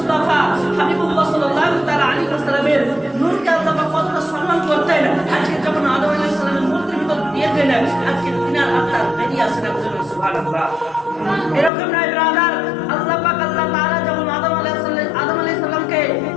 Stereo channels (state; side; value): drops out; right; at 11.7 s